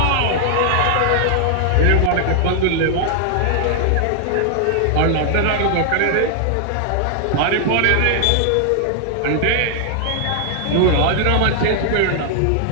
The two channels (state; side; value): different; both; correlation 0.00